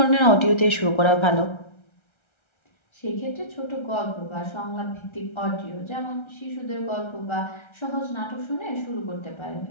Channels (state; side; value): late; right; 1.3 ms